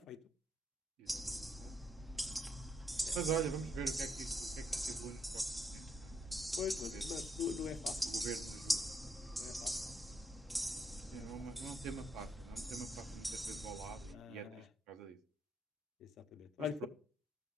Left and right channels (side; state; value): both; normal; correlation 0.76